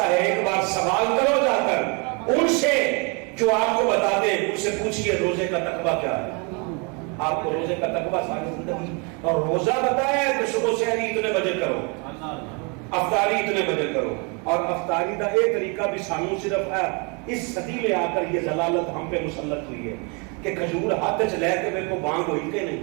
ہے، ایک بار سوال کرو جا کر ان سے جو آپ کو بتا دیں، ان سے پوچھئے روزے کا تقویٰ کیا ہے۔ آپ کو روزے کا تقویٰ ساری زندگی، اور روزہ بتایا ہے کہ صبح سے اتنے بجے کرو، افطاری اتنے بجے کرو، اور افطاری کا ایک طریقہ بھی سانو صرف ہے اس صدی میں آ کر یہ ضلالت ہم پہ مسلط ہوئی ہے کہ کھجور ہاتھ چ لے کے میرے کو بانگ ہوئی کہ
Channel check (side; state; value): left; quieter; 33.1 dB